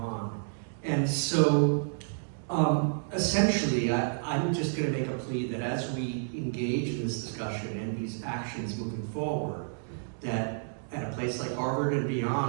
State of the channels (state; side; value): silent; left; digital silence